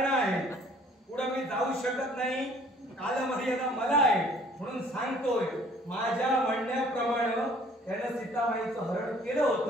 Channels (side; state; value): both; normal; correlation 0.56